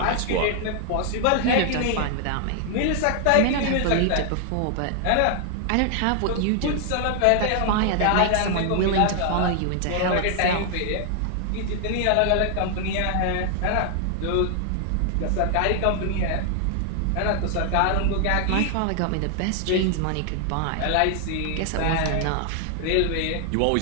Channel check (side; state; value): both; different; correlation 0.00